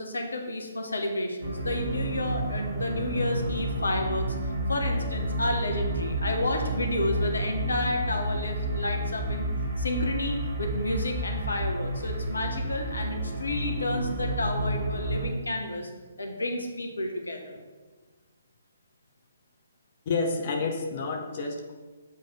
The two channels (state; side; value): inverted; both; correlation -0.66